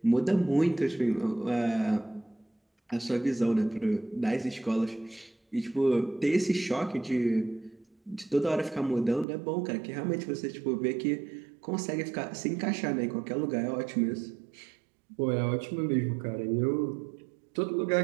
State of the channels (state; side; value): drops out; left; at 9.2 s